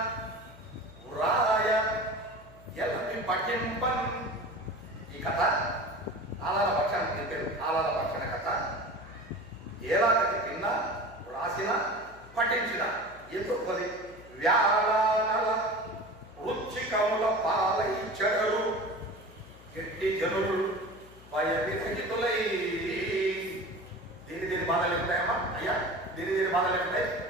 వ్రాయ ఎలమి పఠింపన్. ఈ కథ ఆలాల భక్షణ చెప్పారు. ఆలాల భక్షణ కథ ఏలాగతి విన్న, వ్రాసిన, పఠించిన ఎందుకు వ్యాళానల వృచ్చికముల పాలై చెడరు గట్టి జనులు భయవిరహితులై. దీని బాధలు ఉంటాయమ్మా అయ్యా, దీని బాధలు ఉంటాయి.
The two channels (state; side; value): noise; left; hum, 21 dB below the sound